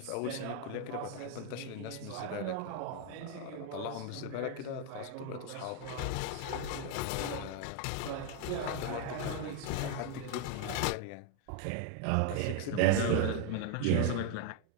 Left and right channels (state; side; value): different; both; correlation 0.01